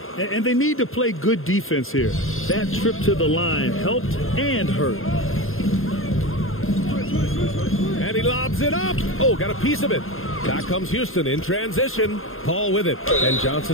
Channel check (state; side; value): late; right; 0.60 ms